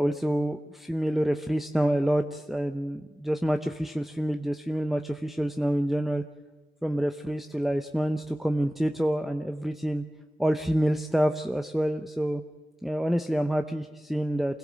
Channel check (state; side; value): normal; both; correlation 0.97